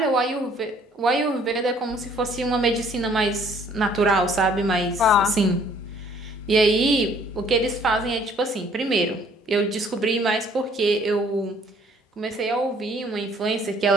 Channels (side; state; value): both; normal; correlation 0.60